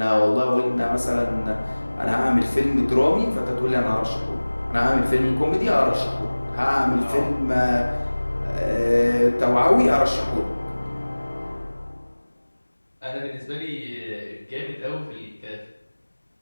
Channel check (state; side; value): inverted; both; correlation -1.00